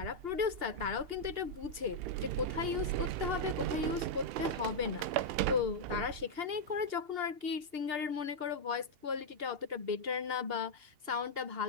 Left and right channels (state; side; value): late; left; 2.8 ms